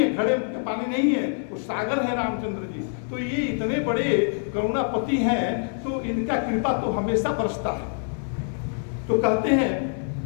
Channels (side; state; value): right; silent; 60 dB below the other